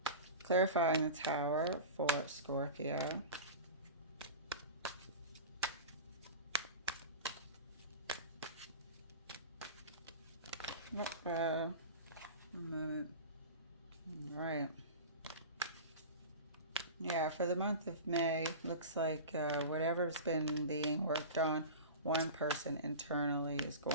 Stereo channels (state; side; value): inverted; both; correlation -0.30